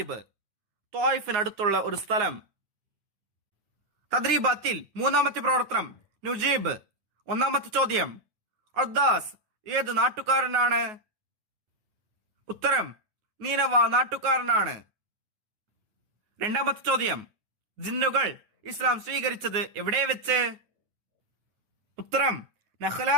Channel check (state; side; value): late; left; 9.5 ms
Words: ത്വായിഫിനടുത്തുള്ള ഒരു സ്ഥലം. തദ്രീബാത്തിൽ മൂന്നാമത്തെ പ്രവർത്തനം നുജീബ്. ഒന്നാമത്തെ ചോദ്യം, അദ്ദാസ് ഏത് നാട്ടുകാരനാണ്? ഉത്തരം, നീനവ നാട്ടുകാരനാണ്. രണ്ടാമത്തെ ചോദ്യം, ജിന്നുകൾ ഇസ്ലാം സ്വീകരിച്ചത് എവിടെ വെച്ച്? ഉത്തരം, നഖ്ല